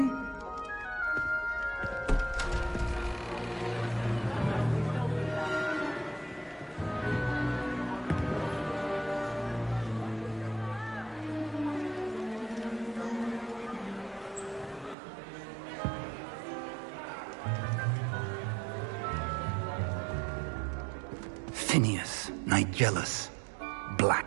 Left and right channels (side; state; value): left; drops out; at 15.0 s